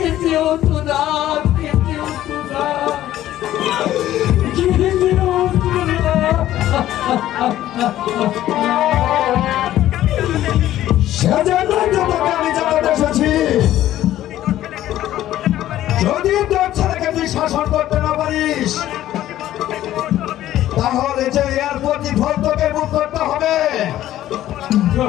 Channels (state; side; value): quieter; right; 13.3 dB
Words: হতো না খেতে হতো না খেতে হতো না। সেজন্যই তো তোকে আমি জানাতে এসেছি। যদি তোর ছেলেকে তুই শাসন করতে না পারিস তাহলে যে এর প্রতিফল তোকে ভোগ করতে হবে।